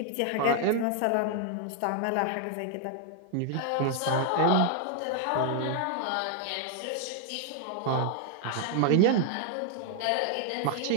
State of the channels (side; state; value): both; different; correlation 0.00